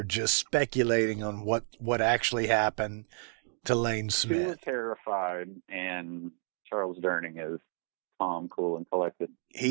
just speculating on what actually happened to Lane Smith. 2 are terrified, and Charles Durning is calm, cool, and collected.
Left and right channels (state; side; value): silent; left; 56 dB below the other